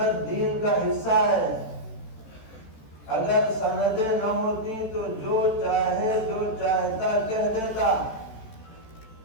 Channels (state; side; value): late; right; 14 ms